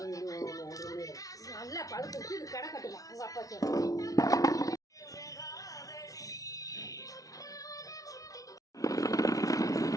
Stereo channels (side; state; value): right; late; 0.17 ms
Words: நல்லா பழுத்து கடை கட்டுமா உங்க அப்பா சொல்ற